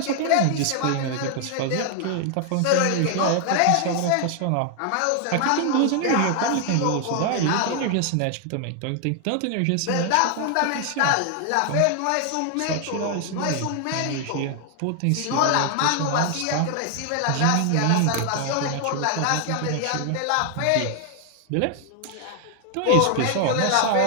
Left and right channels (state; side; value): different; both; correlation 0.00